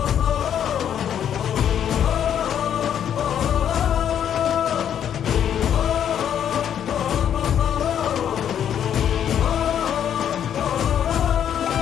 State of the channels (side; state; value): right; quieter; 9.4 dB